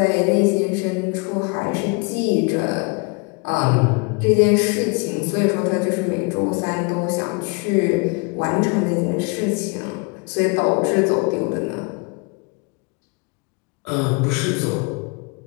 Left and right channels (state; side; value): quieter; right; 31.0 dB